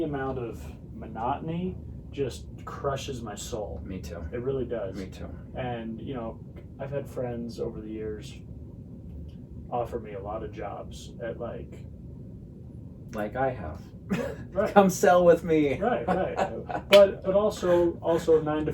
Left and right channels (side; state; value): both; identical; correlation 1.00